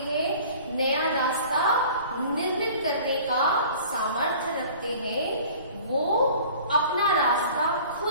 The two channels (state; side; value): inverted; both; correlation -0.46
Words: नया रास्ता निर्मित करने का सामर्थ्य रखते हैं, वो अपना रास्ता